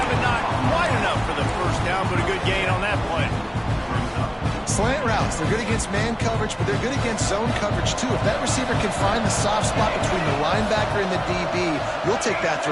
and not quite enough for the first down, but a good gain on that play. Slant routes, they're good against man coverage, but they're good against zone coverage too. If that receiver can find the soft spot between the linebacker and the DB, you'll take that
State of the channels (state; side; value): identical; both; correlation 1.00